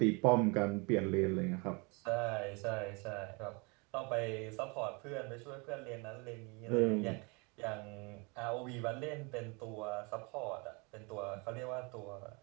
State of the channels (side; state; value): left; quieter; 30.1 dB